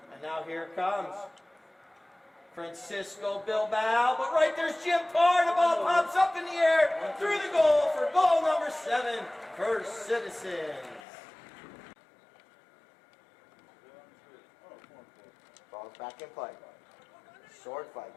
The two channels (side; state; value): right; drops out; at 11.0 s